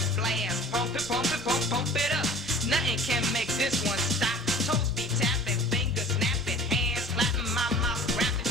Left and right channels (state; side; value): normal; both; correlation 0.44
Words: Pump it up. Nothing can make this one stop. Toes be tapping, fingers snapping, hands slapping, my mouth